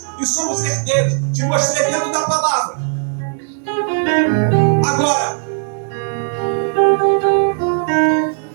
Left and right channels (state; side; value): silent; left; 63 dB below the other